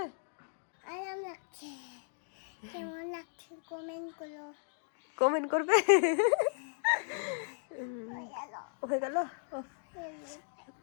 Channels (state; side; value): silent; right; digital silence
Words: আরাম লাগছে। কেমন লাগছে কমেন্ট করবে। হয়ে গেল।